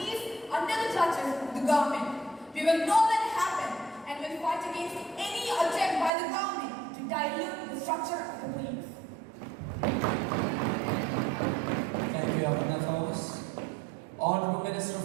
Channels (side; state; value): left; drops out; at 6.1 s